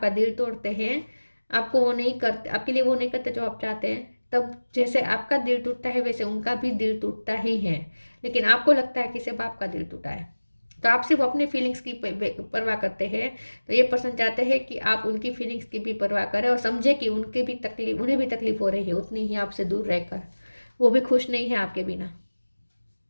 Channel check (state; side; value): inverted; both; correlation -1.00